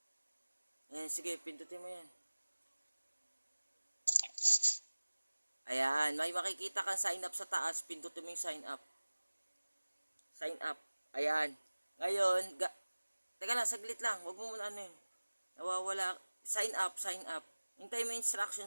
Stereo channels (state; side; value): inverted; both; correlation -1.00